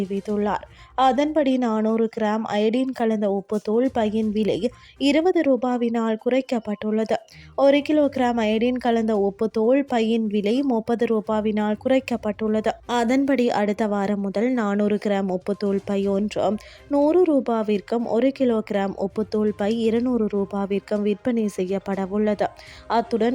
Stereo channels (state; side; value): identical; both; correlation 1.00